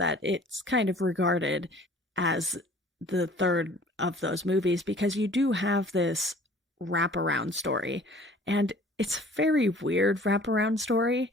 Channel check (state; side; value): normal; both; correlation 0.50